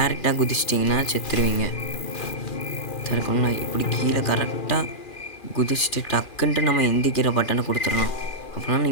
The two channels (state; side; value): late; right; 2.4 ms